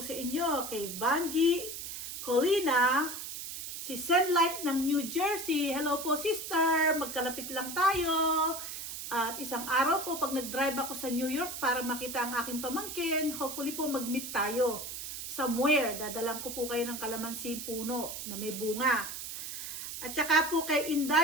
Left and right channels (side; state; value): right; noise; hiss, 7 dB below the sound